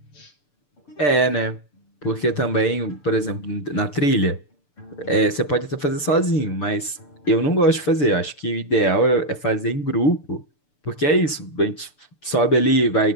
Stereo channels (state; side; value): late; right; 6.8 ms